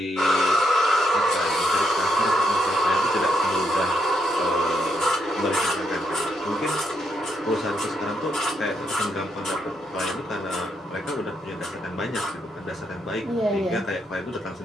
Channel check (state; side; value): normal; both; correlation 0.78